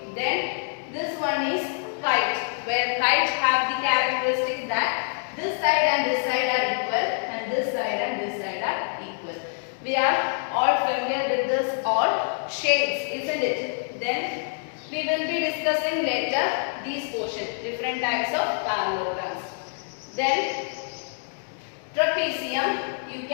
Then this one is kite, where kite have the characteristic that this side and this side are equal, and this side and this side are equal. We are all familiar with this all shapes, isn't it? Then we will be discussing later these portions, different types of parallelograms. Then trapezium, you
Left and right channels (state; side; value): silent; right; 61 dB below the other